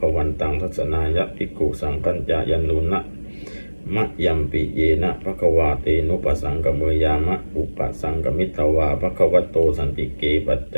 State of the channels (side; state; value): both; inverted; correlation -1.00